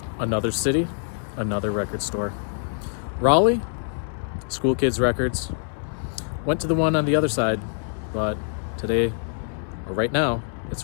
Another city, another record store. Raleigh, Schoolkids Records. Went to the one on the other side, but today, or right now,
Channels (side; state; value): right; silent; 62 dB below the other